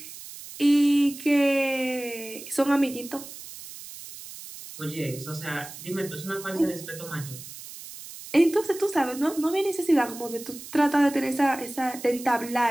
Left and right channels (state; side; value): noise; right; hiss, 14 dB below the sound